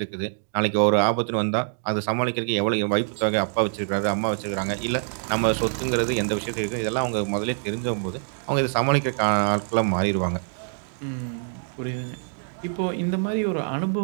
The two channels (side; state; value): left; silent; digital silence